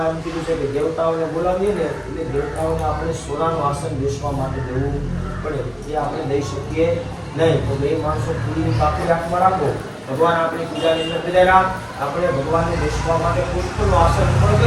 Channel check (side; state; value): both; identical; correlation 1.00